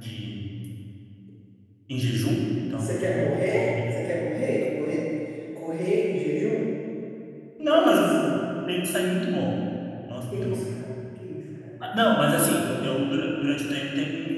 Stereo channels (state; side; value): identical; both; correlation 1.00